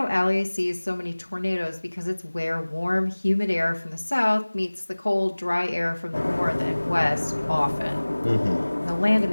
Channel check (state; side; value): inverted; both; correlation -1.00